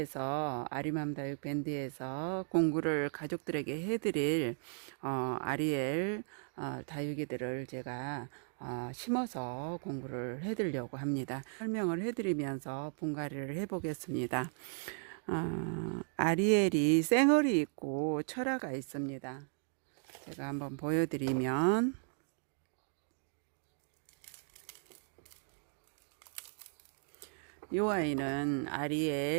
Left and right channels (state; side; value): silent; left; 54 dB below the other